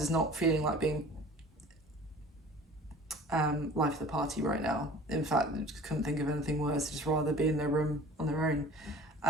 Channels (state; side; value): normal; both; correlation 0.45